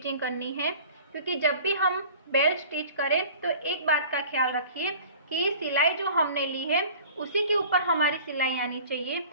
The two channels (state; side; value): inverted; both; correlation -0.44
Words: करनी है, क्योंकि जब भी हम बेल्ट स्टिच करें तो एक बात का ख्याल रखिए कि सिलाई जो हमने ली है उसी के ऊपर हमारी सिलाई आनी चाहिए।